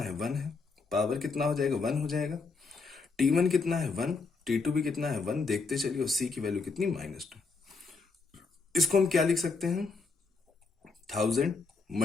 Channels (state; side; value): quieter; right; 4.3 dB